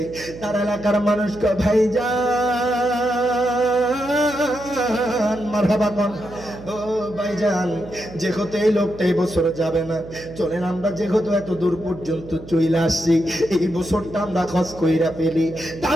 তার এলাকার মানুষ কয় ভাইজান মারহাবা কোন ও ভাইজান যেহেতু এই লোকটা এই বছর যাবে না চলেন আমরা যেহেতু এত দূর পর্যন্ত চইলা আসছি এই বছরটা আমরা হজ কইরা ফেলি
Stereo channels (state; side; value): noise; right; hum, 16 dB below the sound